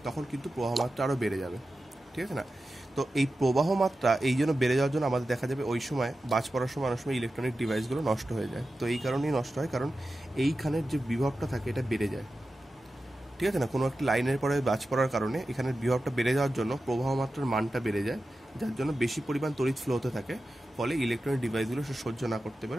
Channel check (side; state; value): both; normal; correlation 0.93